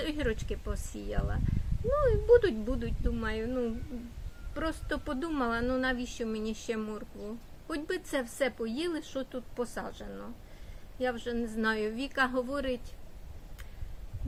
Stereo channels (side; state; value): both; identical; correlation 1.00